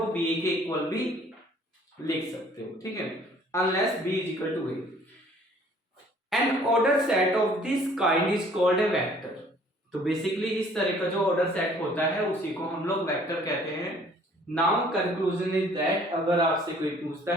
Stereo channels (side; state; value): both; normal; correlation 0.56